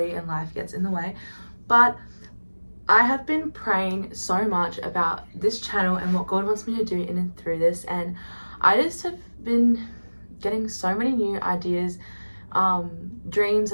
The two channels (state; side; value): inverted; both; correlation -1.00